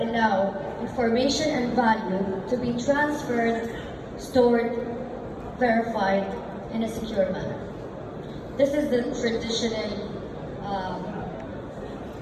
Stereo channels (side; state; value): both; identical; correlation 1.00